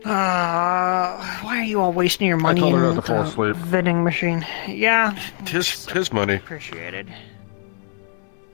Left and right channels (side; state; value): right; silent; digital silence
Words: Why are you all wasting your money told her in not to fall the asleep. vending machine? Yeah. His money. Appreciated.